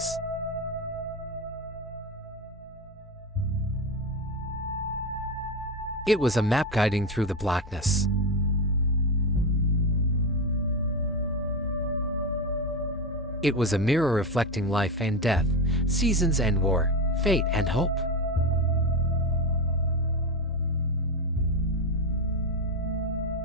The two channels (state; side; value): normal; both; correlation 0.15